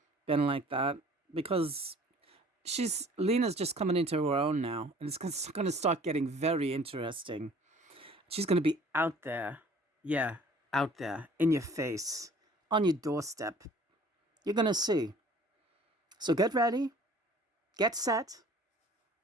been like that, because Lena's just coming into her own now, and it's going to start getting very interesting. She's going to be out there. Yeah, out there, in your face, on your doorstep. You're going to see. So get ready, get set,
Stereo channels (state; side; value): normal; both; correlation 0.51